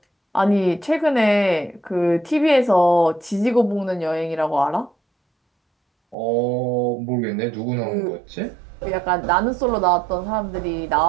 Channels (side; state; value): left; drops out; at 6.2 s